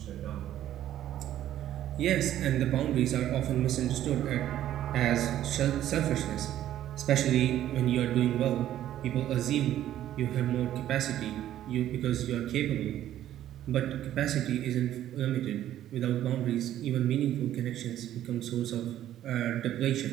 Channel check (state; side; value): quieter; left; 12.2 dB